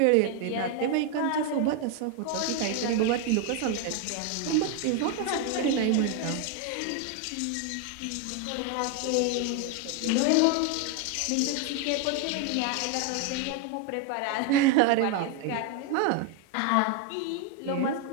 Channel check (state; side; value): different; both; correlation 0.01